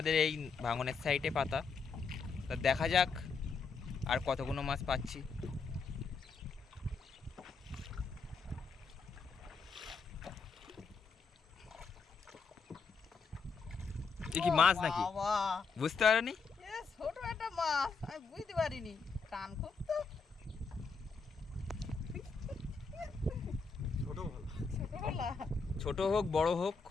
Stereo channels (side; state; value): right; quieter; 4.9 dB